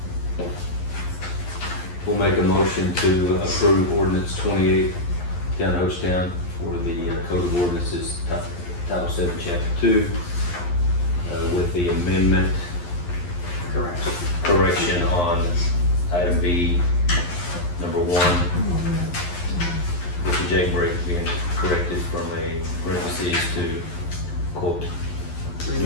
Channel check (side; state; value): right; late; 11 ms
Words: We'll make a motion to approve ordinance 28 down in Hochatown for the Code of Ordinances, Title 7, Chapter 2, with the amendment correction on item B, number 1, with the jailbreak being corrected from a parentheses to quote.